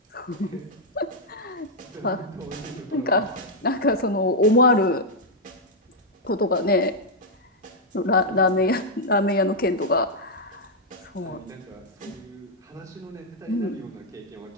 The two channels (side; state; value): both; normal; correlation -0.03